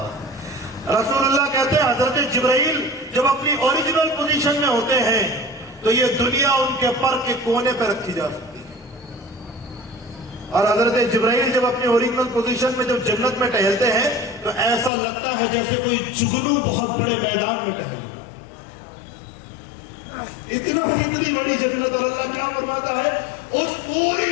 رسول اللہ کہتے ہیں حضرت جبرائیل جب اپنی اوریجنل پوزیشن میں ہوتے ہیں تو یہ دنیا ان کے پر کے کونے پہ رکھی جا سکتی ہے. اور حضرت جبرائیل جب اپنی اوریجنل پوزیشن میں جب جنت میں ٹہلتے ہیں تو ایسا لگتا ہے جیسے کوئی جگنو بہت بڑے میدان میں ٹہل رہا ہے. اتنی بڑی جنت. اور اللہ کیا فرماتا ہے؟ اس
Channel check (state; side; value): drops out; right; at 14.9 s